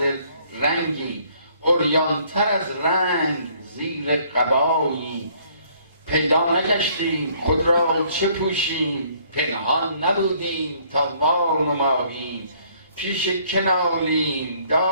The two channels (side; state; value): both; inverted; correlation -0.62